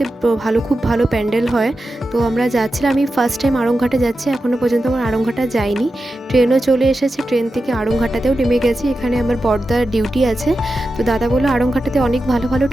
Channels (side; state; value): both; normal; correlation 0.91